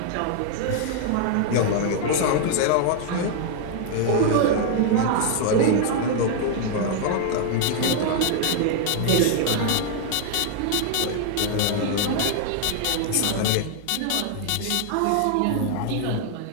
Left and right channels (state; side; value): different; both; correlation 0.00